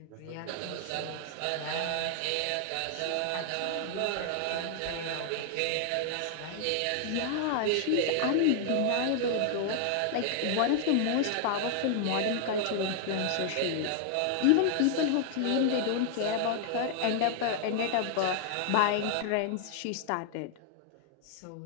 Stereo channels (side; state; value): both; different; correlation 0.00